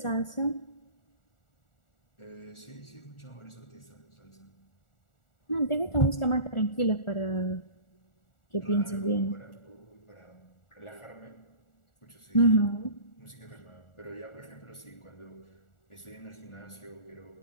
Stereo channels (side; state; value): right; late; 1.4 ms